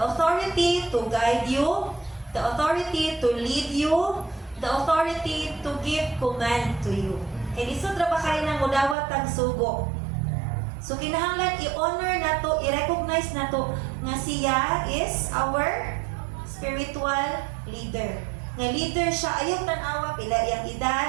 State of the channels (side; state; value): left; drops out; at 9.0 s